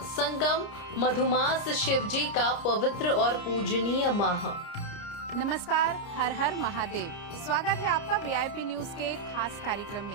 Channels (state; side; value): late; right; 29 ms